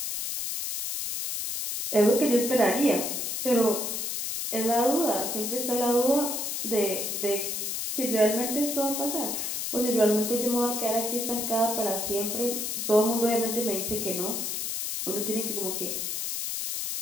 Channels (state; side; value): noise; left; hiss, 2 dB below the sound